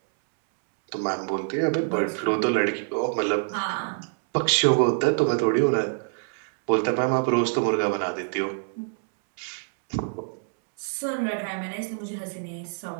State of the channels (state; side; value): silent; left; 61 dB below the other